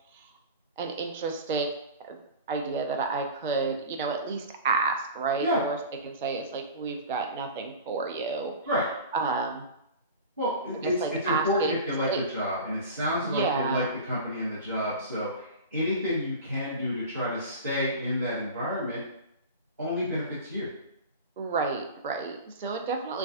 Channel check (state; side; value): inverted; both; correlation -0.33